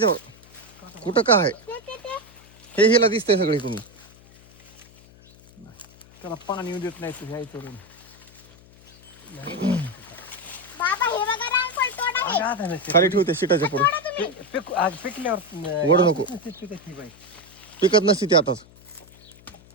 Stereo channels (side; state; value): left; noise; hum, 24 dB below the sound